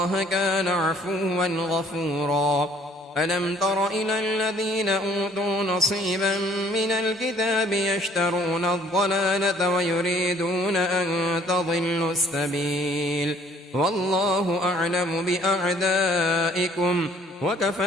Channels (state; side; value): normal; both; correlation 0.59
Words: كان عفوا غفورا ألم تر إلى الذين أوتوا نصيبا من الكتاب يشترون الضلالة ويريدون أن تضلوا السبيل والله أعلم بأعدائكم